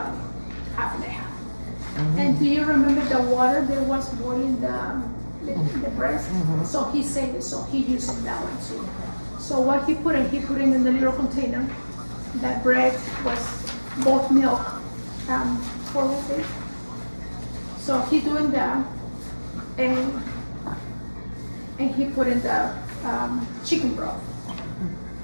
half and a half. And do you remember the water that was boiling the breast? So he saved it, so he used that one too. So what he put in the little container. That bread was both milk, for it. So he doing that, and he put in the chicken broth,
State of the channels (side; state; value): both; inverted; correlation -1.00